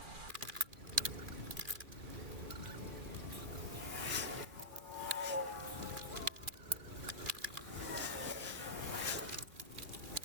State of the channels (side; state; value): left; late; 2.4 ms